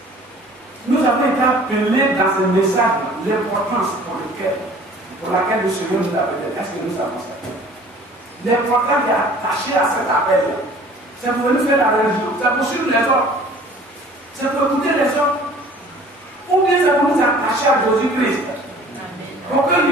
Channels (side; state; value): both; normal; correlation 0.49